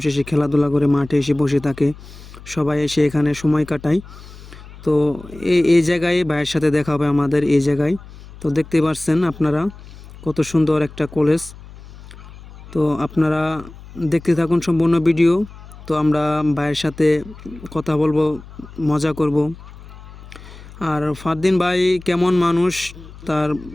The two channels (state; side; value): noise; left; hum, 18 dB below the sound